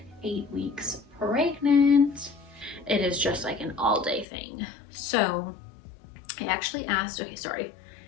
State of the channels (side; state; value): right; drops out; at 4.2 s